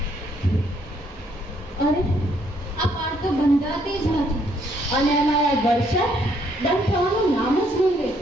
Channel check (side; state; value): both; normal; correlation 0.69